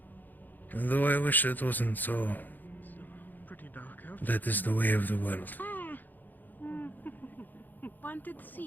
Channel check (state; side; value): late; right; 0.086 ms